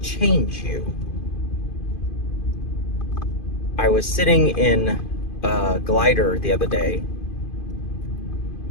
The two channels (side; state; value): right; late; 2.5 ms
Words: change you. I was sitting in a glider the other day,